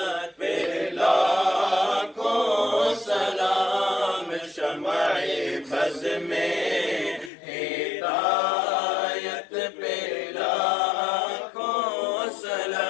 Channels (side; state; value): right; drops out; at 7.3 s